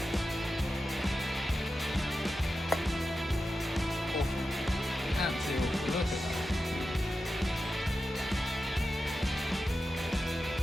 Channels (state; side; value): normal; both; correlation 0.91